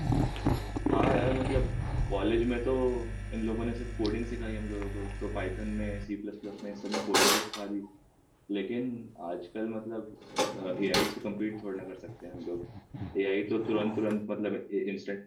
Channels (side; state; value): both; identical; correlation 1.00